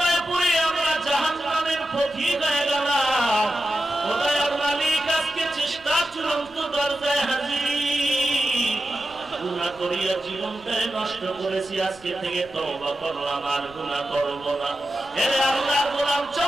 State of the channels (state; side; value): noise; left; rumble, 24 dB below the sound